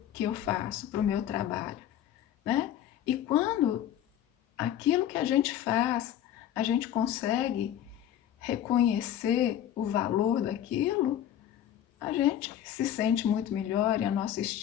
que eu faço, para o meu trabalho, né? E quando aquilo que a gente faz, a gente consegue reconhecer o valor daquilo, a gente se sente muito melhor e a nossa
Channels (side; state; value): right; quieter; 10.9 dB